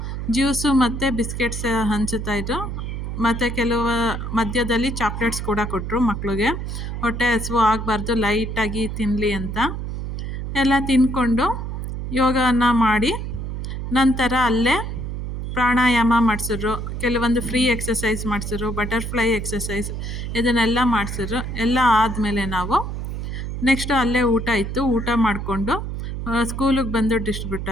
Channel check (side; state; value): right; noise; hum, 5 dB below the sound